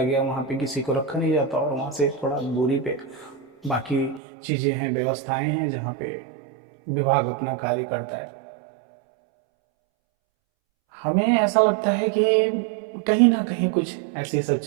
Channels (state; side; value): drops out; left; at 4.2 s